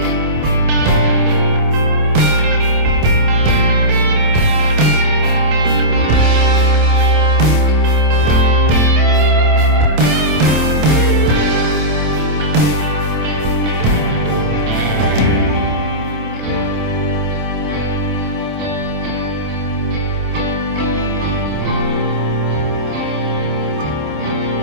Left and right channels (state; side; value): late; left; 27 ms